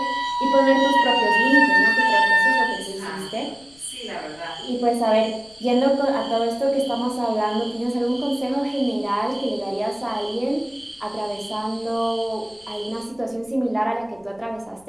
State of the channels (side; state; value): left; noise; rumble, 29 dB below the sound